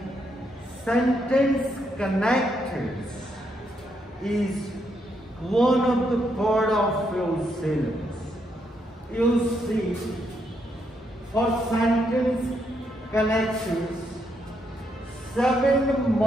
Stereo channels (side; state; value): both; normal; correlation 0.77